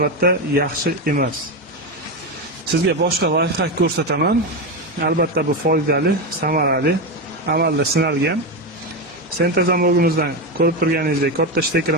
yaxshi emas. Sizga boshqa lifehack ko'rsataman. Albatta bu foydali, samarali, amalda sinalgan. Sentr zamogimizdan ko'rib turganingizdek katta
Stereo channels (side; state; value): both; normal; correlation 0.13